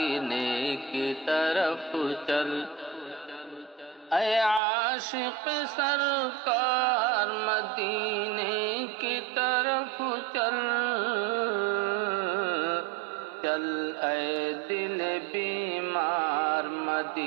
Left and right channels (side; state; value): left; drops out; at 4.6 s